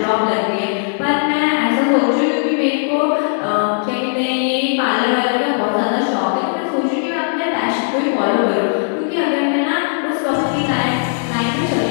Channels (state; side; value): silent; right; digital silence